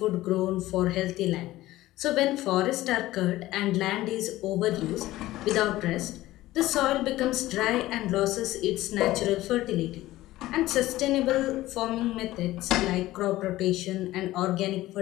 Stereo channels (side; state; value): right; quieter; 16.5 dB